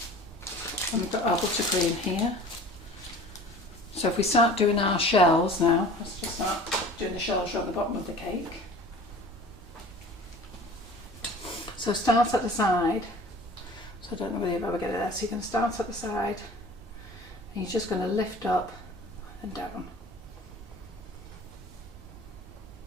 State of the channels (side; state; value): both; normal; correlation 0.44